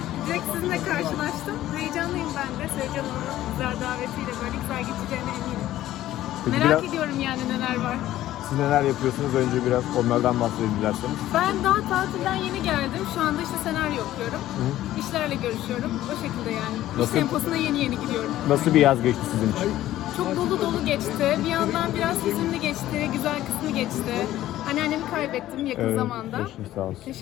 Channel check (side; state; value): right; quieter; 14.0 dB